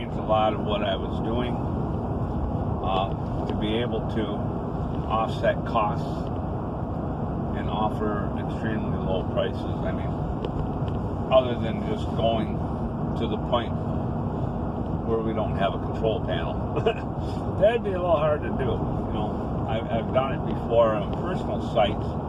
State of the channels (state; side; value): identical; both; correlation 1.00